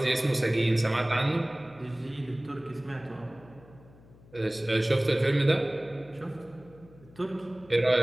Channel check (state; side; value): noise; left; hum, 24 dB below the sound